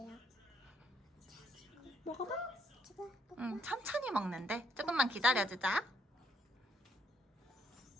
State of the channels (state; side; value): normal; both; correlation 0.71